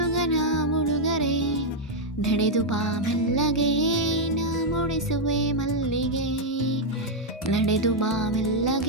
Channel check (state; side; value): normal; both; correlation -0.01